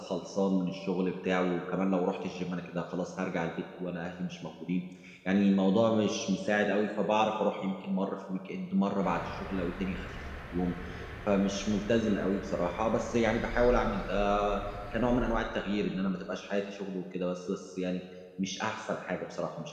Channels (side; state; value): both; identical; correlation 1.00